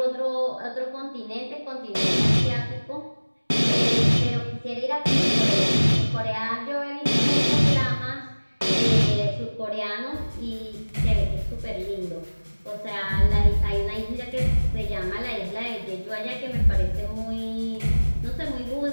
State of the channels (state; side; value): inverted; both; correlation -1.00